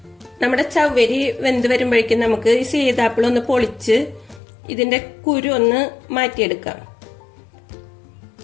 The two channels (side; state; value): right; drops out; at 4.4 s